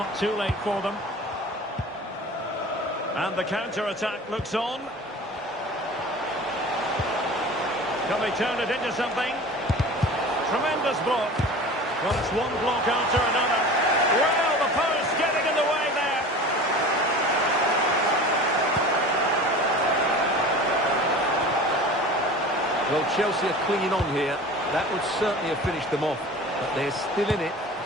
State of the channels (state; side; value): normal; both; correlation 0.38